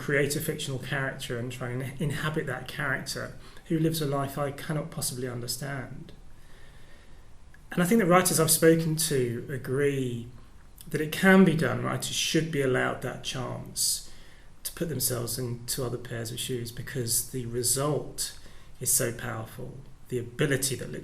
a fictional character and try and inhabit that character who lives a life I cannot possibly understand? And I think that writers I've spoken to agree that it can be done. Writers should be allowed that chance to put themselves into other pairs of shoes, because the result is so powerful. The ability that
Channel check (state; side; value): identical; both; correlation 1.00